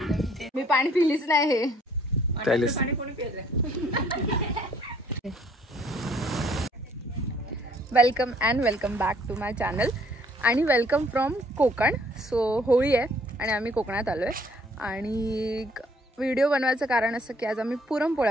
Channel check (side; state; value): both; normal; correlation 0.61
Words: मी पाणी पिलीच नाही हे पाणी कोणी पिलं? Welcome and welcome back to my channel आणि welcome from Konkan. So Holi आहे आणि आम्ही कोकणात आलो आहे आणि व्हिडिओ बनवायचं कारण असं की आज आम्ही